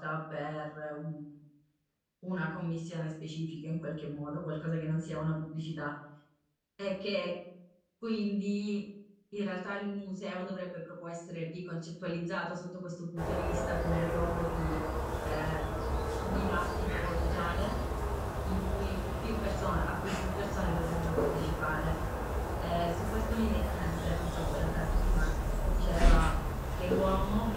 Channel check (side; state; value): both; identical; correlation 1.00